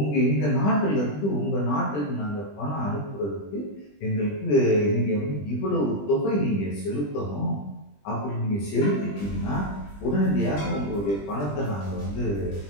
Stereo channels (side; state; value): right; late; 20 ms